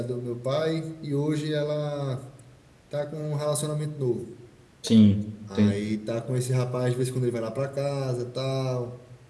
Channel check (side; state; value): both; identical; correlation 1.00